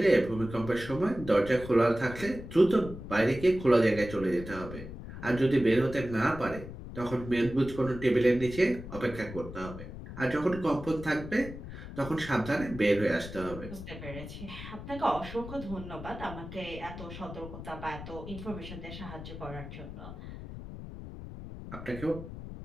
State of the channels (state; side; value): noise; left; rumble, 11 dB below the sound